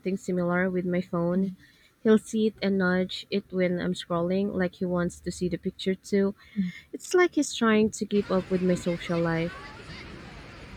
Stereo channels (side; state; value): both; identical; correlation 1.00